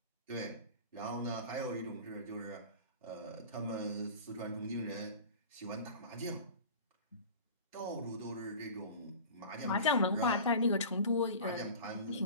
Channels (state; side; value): inverted; both; correlation -0.37